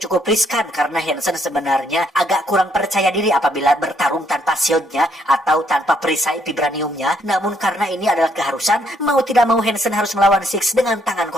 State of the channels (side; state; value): both; normal; correlation 0.71